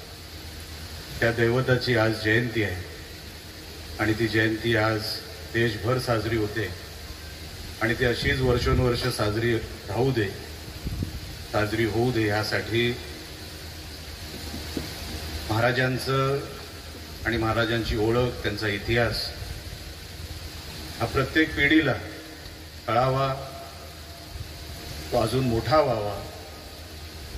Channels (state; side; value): identical; both; correlation 1.00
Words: त्या दैवताची आज जयंती आहे आणि ती जयंती आज देशभर साजरी होते आणि ती अशीच वर्षोनवर्ष साजरी राहू दे, साजरी होऊ दे यासाठी महाराजांचं आणि महाराजांची ओळख, त्यांचा इतिहास हा प्रत्येक पिढीला कळावा, तो अजून मोठा व्हावा